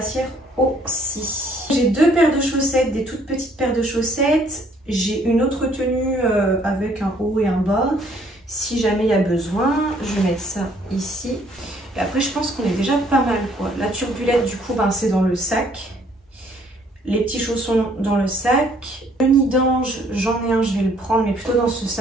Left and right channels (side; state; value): both; normal; correlation 0.63